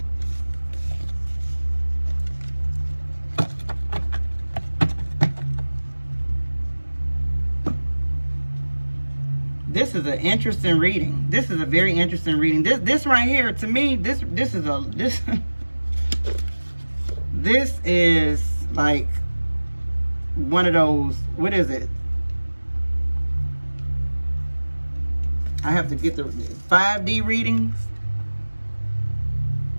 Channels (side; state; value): both; inverted; correlation -1.00